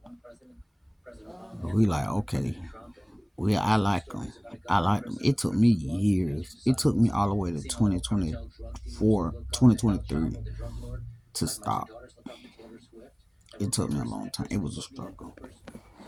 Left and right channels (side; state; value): both; identical; correlation 1.00